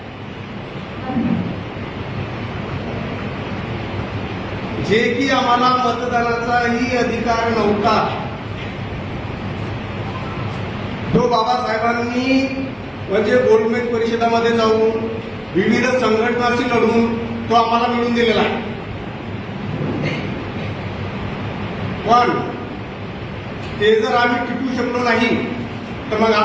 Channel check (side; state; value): both; identical; correlation 1.00